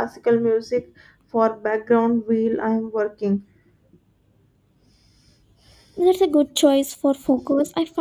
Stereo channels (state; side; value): identical; both; correlation 1.00